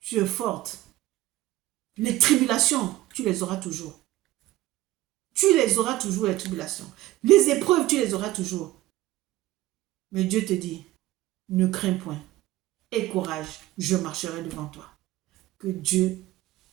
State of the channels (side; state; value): left; quieter; 16.4 dB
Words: es forte. Les tribulations, tu les auras toujours. Tu les auras toujours, les tribulations. Les épreuves, tu les auras toujours. Mais Dieu te dit, ne crains point. Aie courage, je marcherai devant toi. Que Dieu